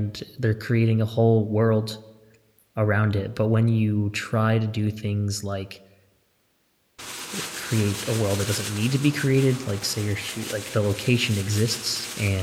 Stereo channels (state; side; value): identical; both; correlation 1.00